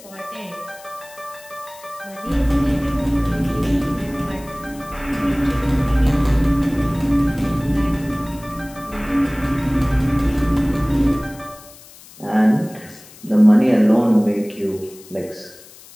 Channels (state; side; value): noise; left; hiss, 21 dB below the sound